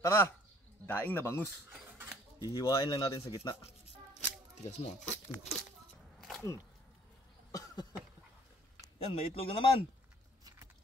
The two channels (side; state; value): both; normal; correlation 0.59